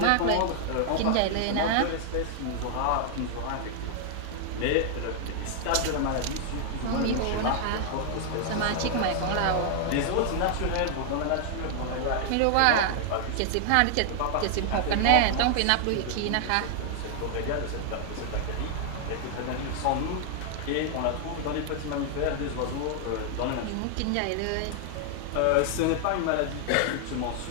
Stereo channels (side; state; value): both; different; correlation 0.00